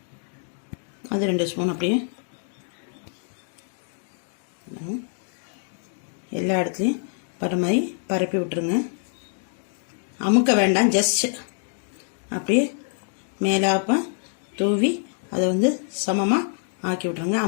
அது 2 ஸ்பூன் அப்படியே எல்லா இடத்துலையும் பர மாதிரி பரப்பி விட்டுருங்க. அமுக்க வேண்டாம், ஜஸ்ட் அப்படியே மேலாப்ப தூவி அதை வந்து சமமாக ஆக்கி விட்ருங்க.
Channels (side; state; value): right; silent; 61 dB below the other